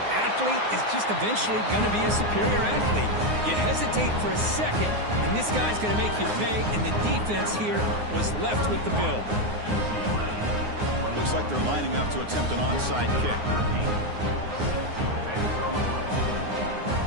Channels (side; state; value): left; late; 9.6 ms